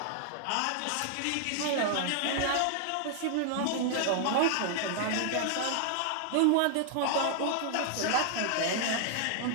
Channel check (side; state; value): both; different; correlation -0.01